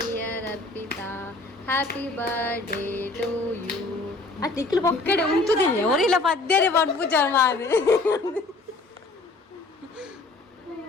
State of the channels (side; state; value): right; quieter; 3.3 dB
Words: Arpita, happy birthday to you. ಆ ಟಿಕ್ಲು ಪೊಕ್ಕಡೆ ಉಂಟುದಿಲ್ಲ ಅವರಿಲ್ಲ ಪದ್ಯನೇ ಪಡ್ಪುಜ ಮಾರು.